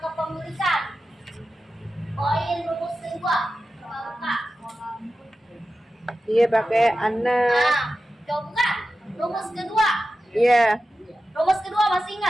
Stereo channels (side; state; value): both; normal; correlation 0.93